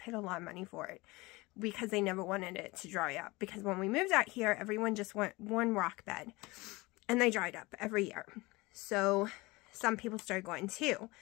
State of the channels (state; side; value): quieter; right; 22.6 dB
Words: a lot of money for it because they never wanted it to dry up. Because when we moved out here, everyone just went 1 rock bed, and they dried up every year. So some people started going 2,